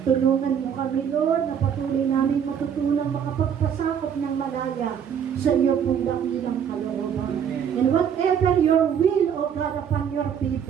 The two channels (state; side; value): quieter; left; 8.1 dB